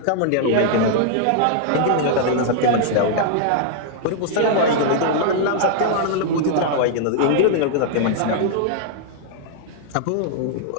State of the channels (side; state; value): both; different; correlation -0.01